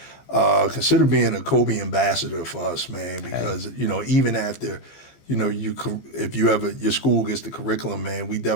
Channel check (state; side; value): late; right; 15 ms